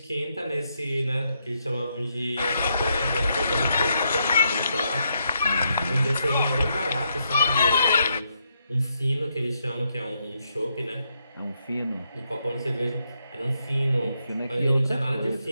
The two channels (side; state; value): both; inverted; correlation -0.79